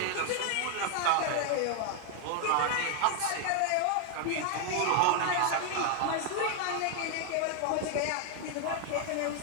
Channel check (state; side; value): different; both; correlation 0.00